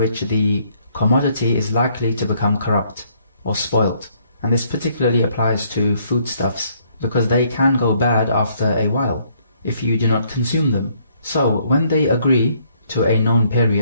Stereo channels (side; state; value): both; inverted; correlation -0.67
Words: the commodity is likely to become corrupt or spoilt. And this particularly applies to foodstuffs, because they can go bad after a while if you do not consume them. So when they agree to a known